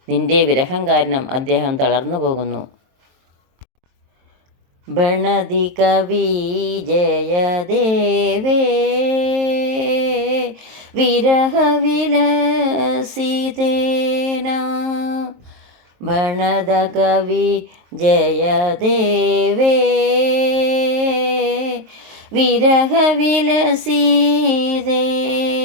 നിന്റെ വിരഹം കാരണം അദ്ദേഹം തളർന്നു പോകുന്നു. ബണതി കവി ജയദേവേ വിരഹ വിലസിതേന. ബണത കവി ജയദേവേ വിരഹ വിലസിതേന.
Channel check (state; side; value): late; left; 22 ms